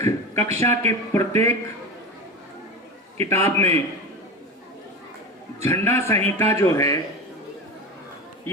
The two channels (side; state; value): both; normal; correlation 0.25